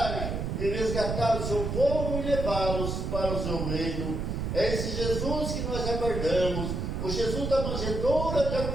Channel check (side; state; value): right; noise; rumble, 2 dB below the sound